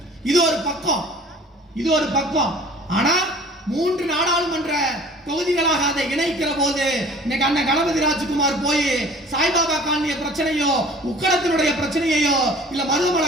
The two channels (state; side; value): normal; both; correlation 0.48